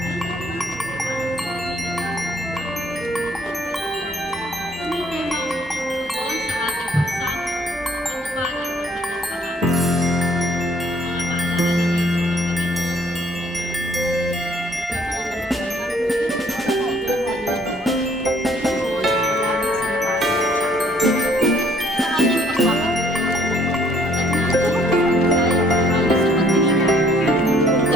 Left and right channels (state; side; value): normal; both; correlation 0.62